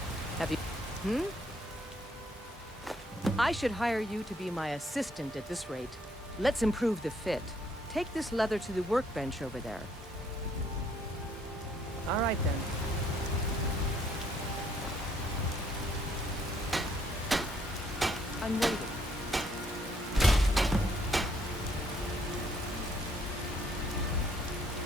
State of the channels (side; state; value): both; normal; correlation 0.67